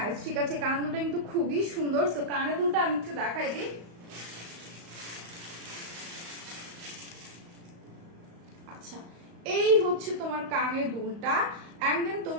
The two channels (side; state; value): left; late; 35 ms